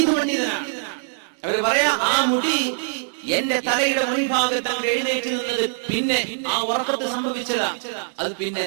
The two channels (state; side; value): silent; left; digital silence